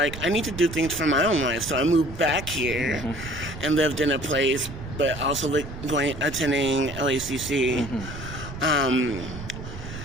I need to do things for my own life. So I moved back here and lived in a place, but also attending LACC. Mm-hmm.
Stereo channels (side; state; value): right; noise; rumble, 11 dB below the sound